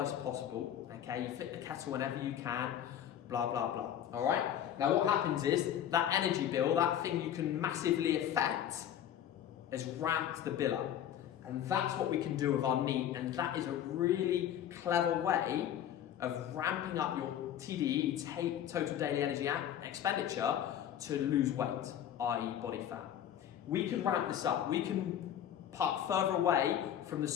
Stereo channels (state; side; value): quieter; right; 10.3 dB